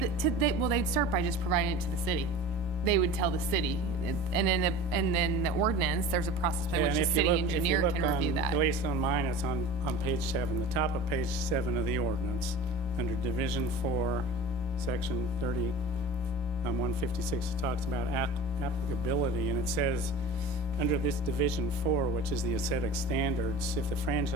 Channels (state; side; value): normal; both; correlation 0.36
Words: Well, they'd start by just providing it to the city. They would tell the city, and then the ordinance, there's a process by Yeah, which and the if you city look- engineer if you can look review on- that. At least on mine, it's on page 7, the top of page 7 of the ordinance, under Division 4, Section 30, 156, it talks about applicability, and it says, under this Division 4, which is the aesthetic standards, if the